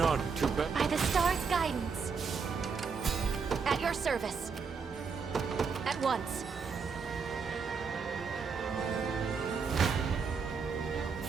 to bet. By the star's guidance. At your service. At once.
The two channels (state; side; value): quieter; left; 5.5 dB